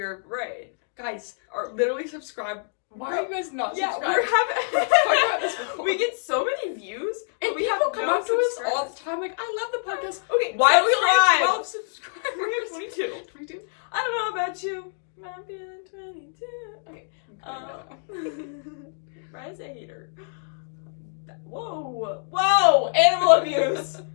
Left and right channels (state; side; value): silent; right; digital silence